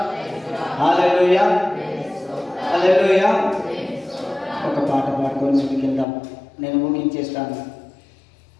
హల్లెలూయా, హల్లెలూయా. ఒక పాట పాడుకొని ముందుకెళ్దాం. నేను ముగించేస్తాను.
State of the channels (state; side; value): drops out; right; at 6.1 s